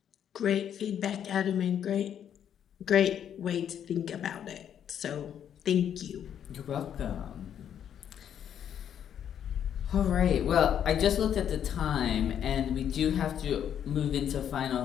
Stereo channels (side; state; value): right; quieter; 9.3 dB